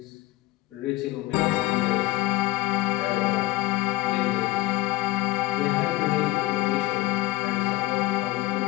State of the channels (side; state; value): right; quieter; 19.1 dB